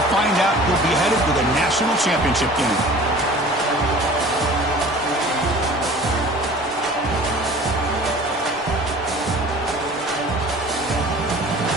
find out who'll be headed to the national championship game.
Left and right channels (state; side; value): normal; both; correlation 0.44